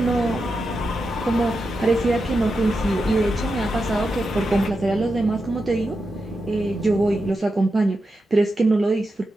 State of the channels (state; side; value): normal; both; correlation 0.88